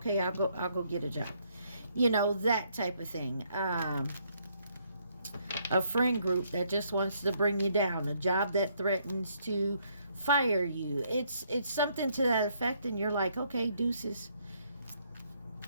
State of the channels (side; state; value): both; inverted; correlation -0.70